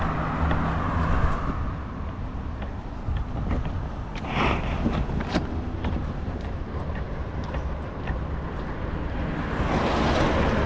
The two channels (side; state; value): both; identical; correlation 1.00